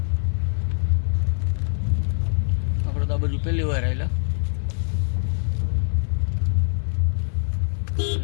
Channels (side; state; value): right; silent; digital silence